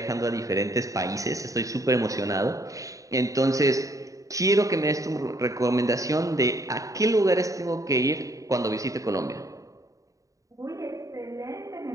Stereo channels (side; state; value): left; late; 0.16 ms